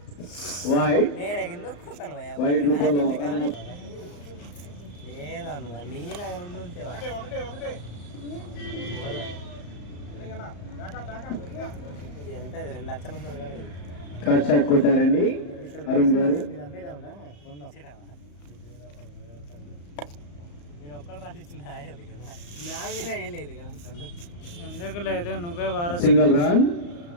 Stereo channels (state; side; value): late; right; 34 ms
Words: కట్ షాట్ కొట్టారండి అరుణ్ గారు. ఎందుకు లేదు, నువ్వే వారసు. Single run.